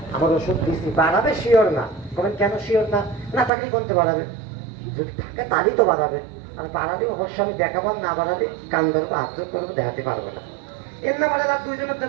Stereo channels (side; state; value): left; drops out; at 3.5 s